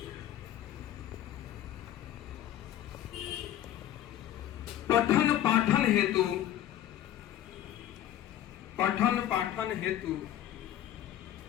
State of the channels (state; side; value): quieter; right; 12.0 dB